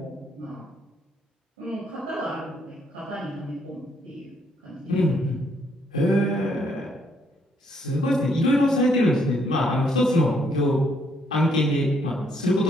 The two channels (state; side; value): normal; both; correlation 0.71